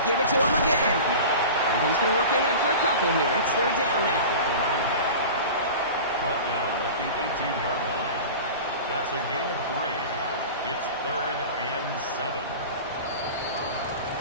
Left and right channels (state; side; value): inverted; both; correlation -0.34